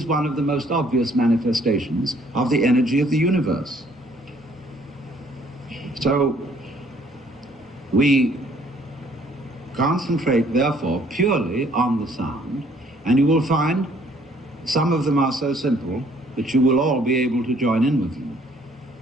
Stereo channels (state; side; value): normal; both; correlation 0.62